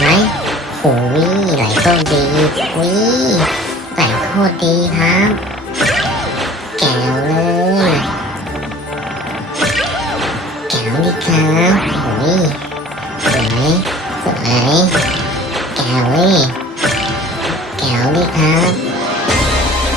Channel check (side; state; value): both; normal; correlation 0.47